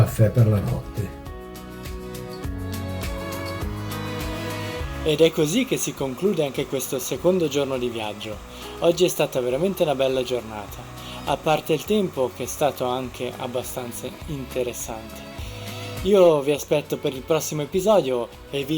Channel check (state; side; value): identical; both; correlation 1.00